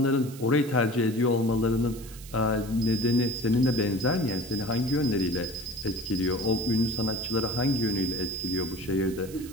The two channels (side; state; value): right; noise; hiss, 17 dB below the sound